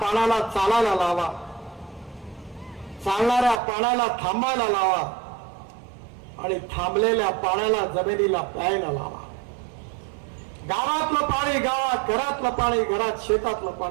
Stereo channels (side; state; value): left; drops out; at 3.6 s